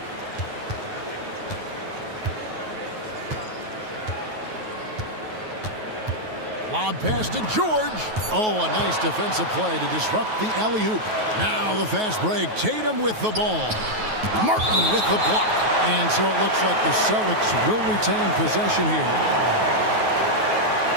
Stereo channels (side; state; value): left; late; 9.3 ms